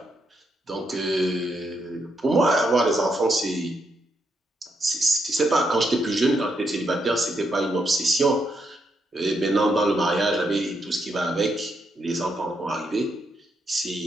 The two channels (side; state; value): both; normal; correlation 0.79